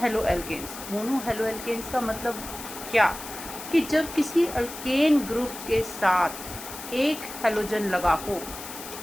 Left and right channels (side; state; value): left; noise; hiss, 11 dB below the sound